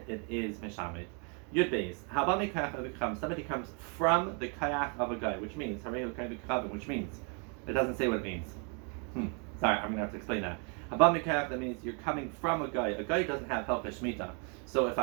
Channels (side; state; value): left; quieter; 37.4 dB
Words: it is Mishamet. Yud Beis. Somebody comes from the kayak of a guy, which means it doesn't say what it means. Sorry, I'm going to have to explain that. That means you're coming from a guy. A guy doesn't have help Shemitah. So if